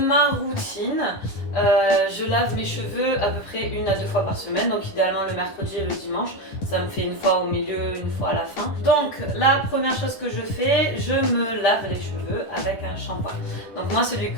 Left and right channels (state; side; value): late; right; 10 ms